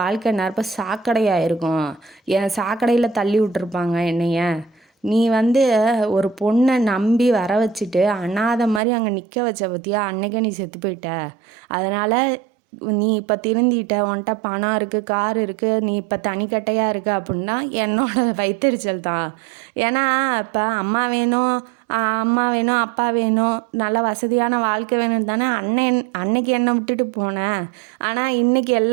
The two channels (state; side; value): drops out; left; at 8.8 s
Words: வாழ்க்கை நேரப்போ சாக்கடையாக இருக்கும், என் சாக்கடையில் தள்ளி விட்டுருப்பாங்க என்னைய, நீ வந்து ஒரு பொண்ணை நம்பி வர வச்சுட்டு அனாதை மாதிரி அங்கே நிற்க வச்ச பற்றியா, அன்னைக்கே நீ செத்து போயிட்ட. அதனால் நீ இப்போ திருந்திட்ட, உன்கிட்ட பணம் இருக்குது, கார் இருக்குது, நீ இப்போ தனிக்கட்டையாக இருக்க அப்படின்னா என்னோட வயித்தெரிச்சல் தான். ஏன்னா இப்போ அம்மா வேணும், அம்மா வேணும், அப்பா வேணும், நல்ல வசதியான வாழ்க்கை வேணும்னு தானே அன்னைக்கு என்னை விட்டுட்டு போனேன். ஆனால் இன்றைக்கி